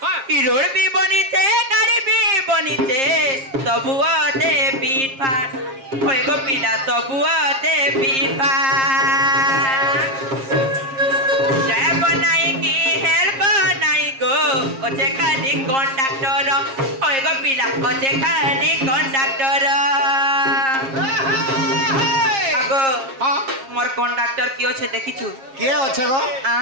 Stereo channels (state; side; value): late; left; 7.5 ms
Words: ई रोड भी बनी छे गाड़ी भी बनी छे सबुआते पीट फाट होय गो पिला सबुआते पीट फाट जय बनाई की हेल्प बनाई गो ओचे खाली कंडक्टर होय गो पिला ओचे खाली कंडक्टर आगो हां मोर कंडक्टर डॉक्टर की अच्छे देखिछु के अच्छे गो